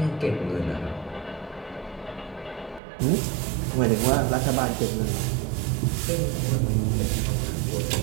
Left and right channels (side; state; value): left; drops out; at 2.8 s